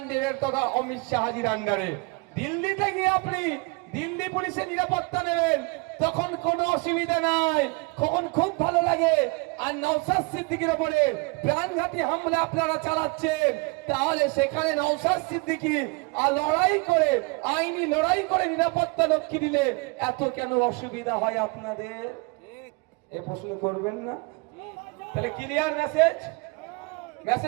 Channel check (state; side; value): quieter; left; 28.5 dB